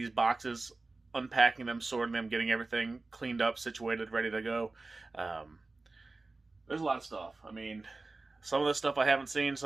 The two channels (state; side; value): quieter; left; 3.4 dB